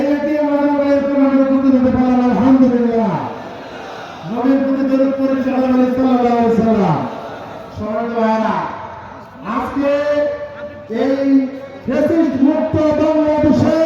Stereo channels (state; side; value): identical; both; correlation 1.00